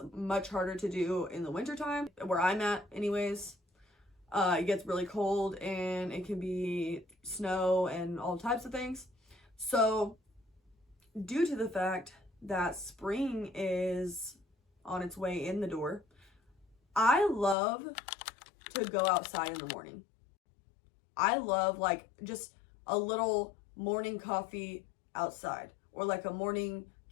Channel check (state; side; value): drops out; right; at 17.6 s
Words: much harder to do in the wintertime, where I'm at anyways. It gets really cold and it can be snow and all types of things. So due to the fact that spring is on its way in the door, I love to go outside in the morning. I love like just a little morning coffee outside, or like a morning